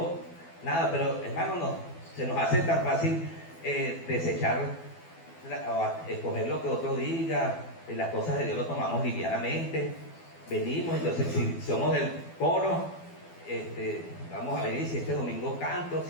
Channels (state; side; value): late; right; 12 ms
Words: nada. Pero hermano, no, se nos hace tan fácil desechar o escoger lo que otro diga. Las cosas de Dios lo tomamos livianamente. Venimos, entonces si somos del coro, vamos a venir, si este domingo canto,